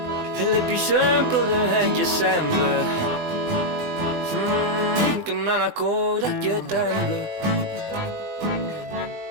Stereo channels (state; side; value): late; left; 20 ms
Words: e le più sempre de che sembra che non ha corda che trembla